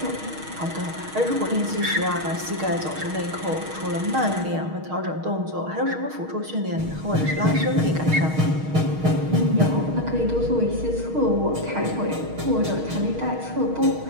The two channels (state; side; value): late; left; 6.4 ms